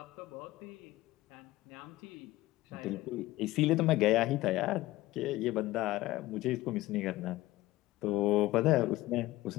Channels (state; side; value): quieter; right; 17.6 dB